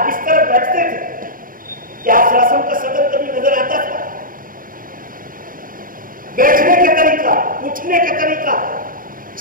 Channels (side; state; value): left; late; 0.41 ms